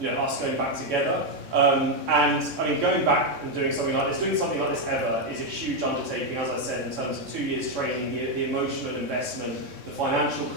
us going back together. And I mean, going back and doing something like this ever is a huge undertaking, as I said, in terms of 2 years training, the emotional investment, the financial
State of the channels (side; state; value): left; late; 3.6 ms